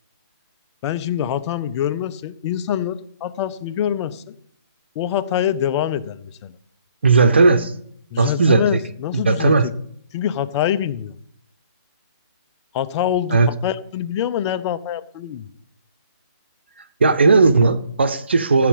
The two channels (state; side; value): inverted; both; correlation -0.62